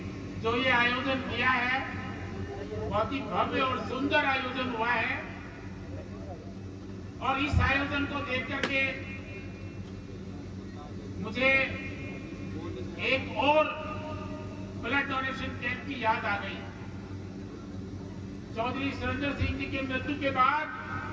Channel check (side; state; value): both; identical; correlation 1.00